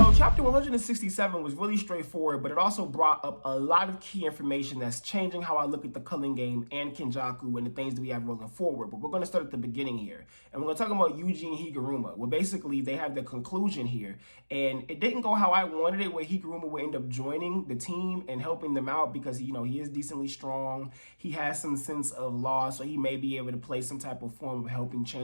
chapter 167 was really straightforward, but it also brought up a lot of key information that's changing how I look at the culling game and Kenjaku and the things that we have rolling forward. But we're going to start at the beginning here. And we're going to talk about Yuji and Higaruma. Well, basically, they have the conclusion here. And it didn't go how I wanted it, where Higaruma would end up joining the team and helping them out because, he is decently strong. He has some sense of law, so he may be able to play some type of form of helping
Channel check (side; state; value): both; inverted; correlation -1.00